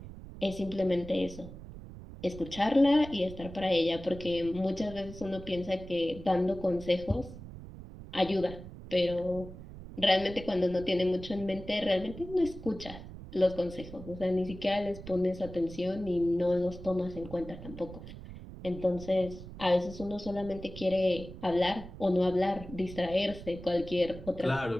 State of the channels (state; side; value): noise; right; rumble, 13 dB below the sound